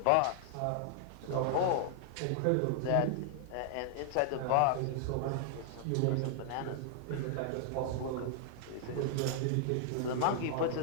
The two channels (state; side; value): different; both; correlation 0.00